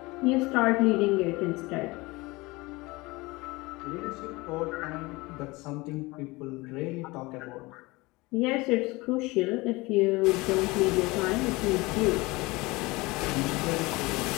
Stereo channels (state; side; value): quieter; right; 22.8 dB